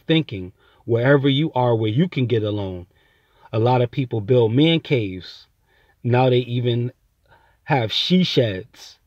thinking, wherever you are, where you can get alone. A lot of people build man caves. Now they even have she sheds.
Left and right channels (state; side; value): identical; both; correlation 1.00